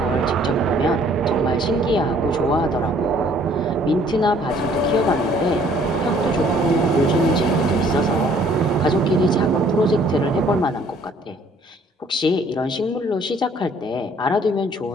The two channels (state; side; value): normal; both; correlation 0.59